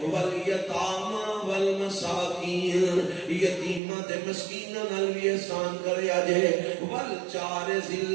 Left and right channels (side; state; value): left; drops out; at 3.8 s